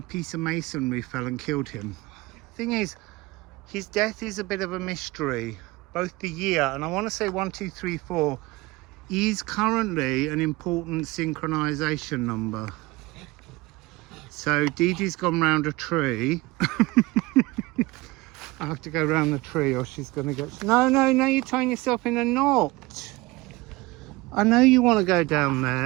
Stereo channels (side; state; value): left; quieter; 21.5 dB